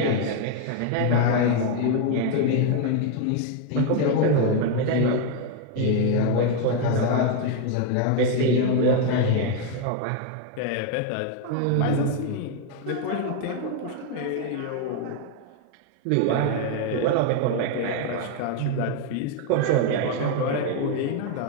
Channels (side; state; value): both; different; correlation 0.01